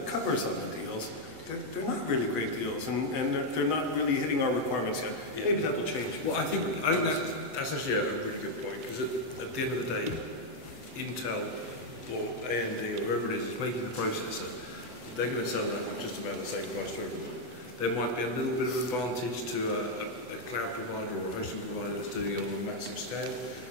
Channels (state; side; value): late; left; 8.0 ms